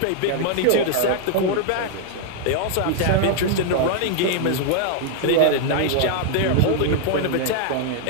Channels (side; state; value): both; different; correlation 0.00